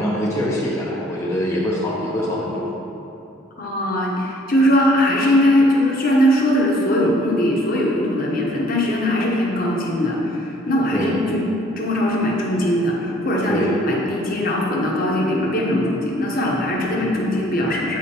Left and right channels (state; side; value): normal; both; correlation 0.59